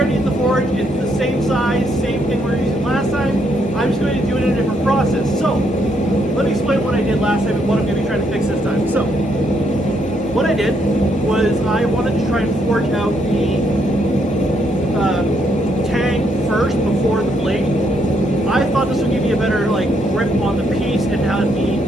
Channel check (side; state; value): both; normal; correlation 0.74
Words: in the forge. It's the same size, same thing we were using last time. I'm just going to do it in a different process. So, let me explain what I did last time and what I'm going to be trying to fix this time. So, what I did was I wanted to try and forge out the tang first before the blade. I thought this would give you a better grip on the piece and have me